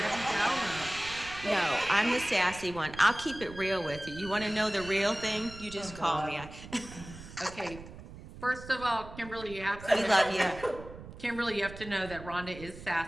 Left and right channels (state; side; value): noise; right; rumble, 15 dB below the sound